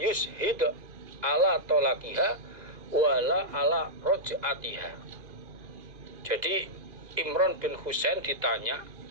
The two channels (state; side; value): late; left; 2.5 ms